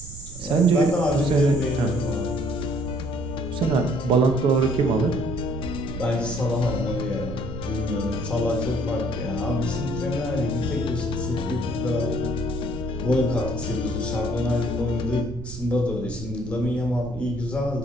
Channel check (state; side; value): noise; right; rumble, 12 dB below the sound